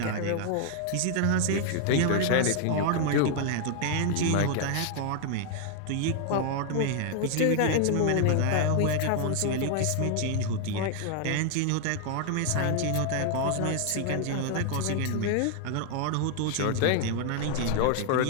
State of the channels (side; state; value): both; different; correlation 0.00